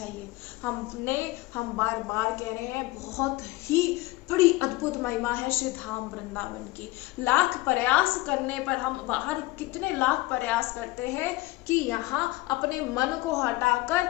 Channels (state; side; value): quieter; right; 20.2 dB